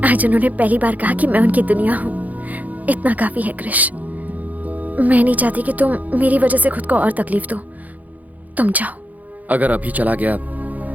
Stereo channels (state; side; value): late; left; 0.078 ms